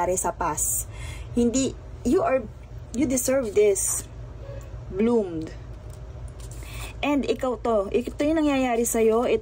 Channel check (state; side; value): identical; both; correlation 1.00